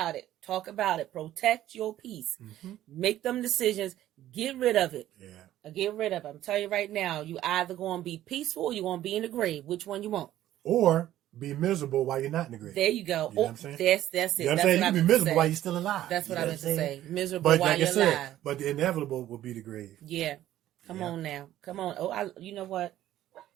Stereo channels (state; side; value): quieter; left; 13.2 dB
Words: it. Talk about it. Protect your peace. Mm-hmm. Make them decisions. Get rid of it. Yeah. Get rid of it. I'm telling you right now, you either going to be peaceful or you're going to be in the grave. Which one you want? Or be miserable while you're not in the grave. There you go. You know what I'm saying? That's it. You know what I'm saying? You can be miserable while you're still alive. That's what I meant to say. Miserable but while like you're alive. But the inevitable will be the grave. Yeah. Come on now. Come on. Oh, you know what?